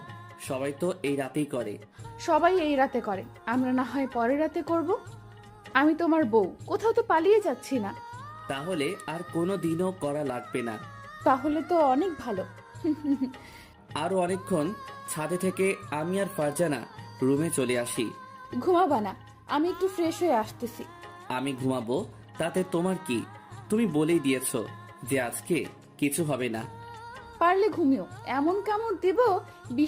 সবাই তো এই রাতেই করে। সবাই এই রাতে করে, আমরা না হয় পরের রাতে করব। আমি তোমার বউ, কোথাও তো পালিয়ে যাচ্ছি না। তাহলে আর কোনো দিনও করা লাগবে না। তাহলে তো অনেক ভালো। আরো অনেকক্ষণ ছাদে থেকে আমি আর ফারজানা রুমে চলে আসি। ঘুমাবা না? আমি একটু ফ্রেশ হয়ে আসতেছি। আমি ঘুমাবো, তাতে তোমার কি? তুমি বলেই দিয়েছো যে আজকে কিছু হবে না। পারলে ঘুমিও, এমন কামড় দিব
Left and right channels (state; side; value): identical; both; correlation 1.00